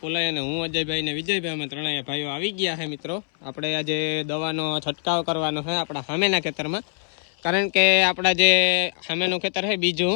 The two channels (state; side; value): silent; right; 63 dB below the other